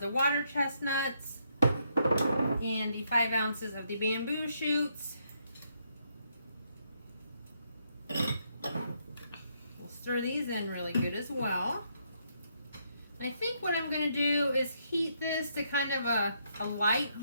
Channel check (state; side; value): inverted; both; correlation -0.75